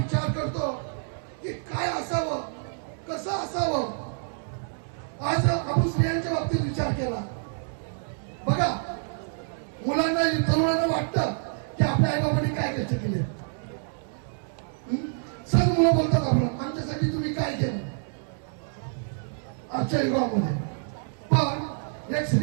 करतो की काय असावं, कसं असावं. आज आपण स्त्रियांच्या बाबतीत विचार केला. बघा, मुलांना तरुणांना वाटतं की आपल्या आई बाबांनी काय कष्ट केले. सर्व मुलं बोलतात आपण आमच्यासाठी तुम्ही काय केलं आजच्या युगामध्ये. पण एक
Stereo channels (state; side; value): silent; left; 58 dB below the other